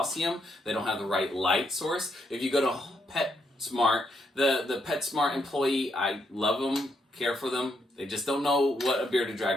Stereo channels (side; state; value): both; normal; correlation 0.77